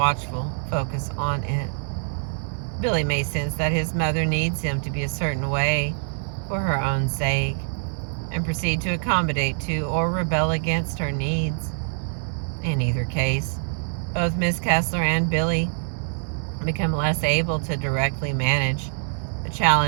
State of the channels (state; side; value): silent; left; 62 dB below the other